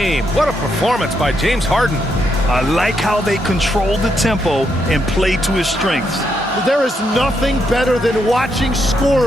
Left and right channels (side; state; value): both; normal; correlation 0.79